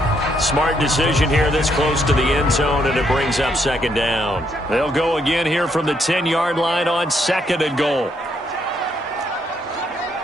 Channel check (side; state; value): both; normal; correlation 0.74